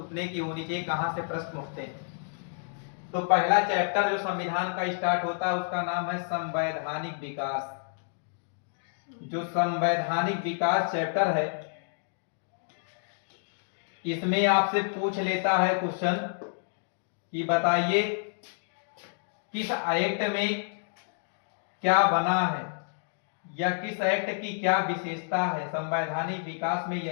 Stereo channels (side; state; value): right; silent; digital silence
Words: की होनी चाहिए कहां से प्रश्न उठते हैं। तो पहला चैप्टर जो संविधान का स्टार्ट होता है उसका नाम है संवैधानिक विकास। जो संवैधानिक विकास चैप्टर है इसमें आपसे पूछ लेता है क्वेश्चन कि बताइए किस एक्ट में क्या बना है या किस एक्ट की क्या विशेषता है। संवैधानिक विकास में